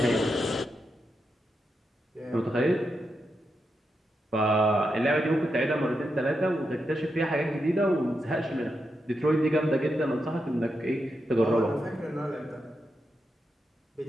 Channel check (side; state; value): both; normal; correlation 0.86